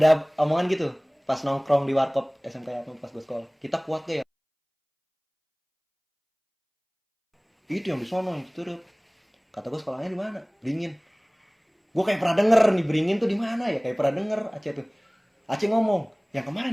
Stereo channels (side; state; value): both; identical; correlation 1.00